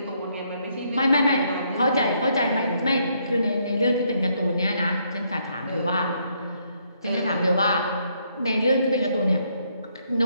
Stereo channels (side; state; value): both; inverted; correlation -0.73